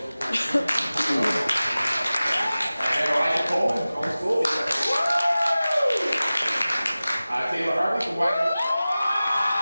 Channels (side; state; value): both; inverted; correlation -0.97